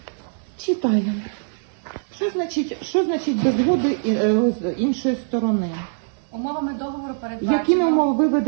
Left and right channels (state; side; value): silent; left; digital silence